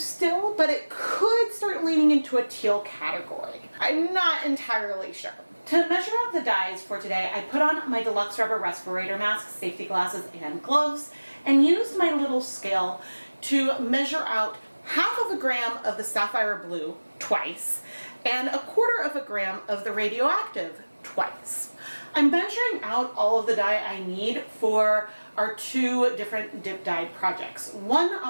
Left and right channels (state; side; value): inverted; both; correlation -1.00